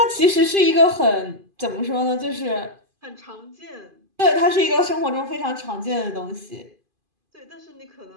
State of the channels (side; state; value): left; late; 2.5 ms